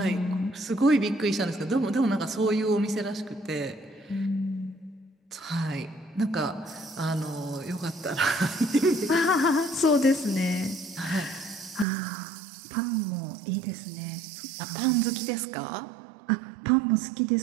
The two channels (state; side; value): drops out; left; at 11.9 s